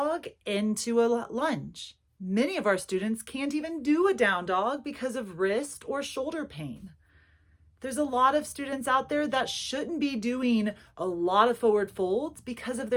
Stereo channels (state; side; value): identical; both; correlation 1.00